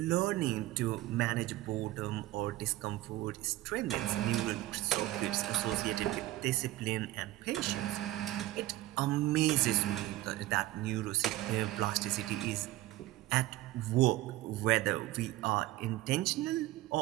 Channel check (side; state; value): left; quieter; 16.6 dB